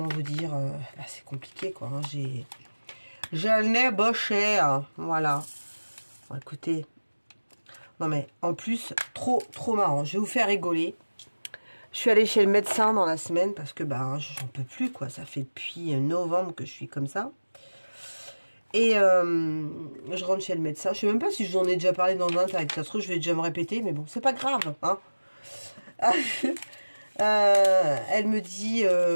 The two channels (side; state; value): both; inverted; correlation -1.00